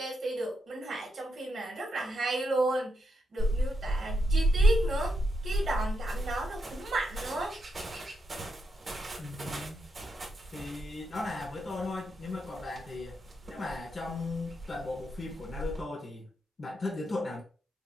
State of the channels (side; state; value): both; normal; correlation 0.82